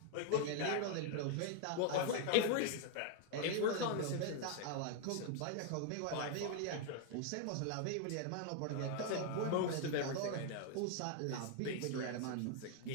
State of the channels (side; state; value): both; different; correlation 0.00